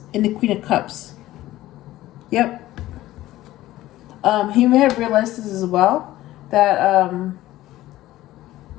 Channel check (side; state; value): right; quieter; 15.7 dB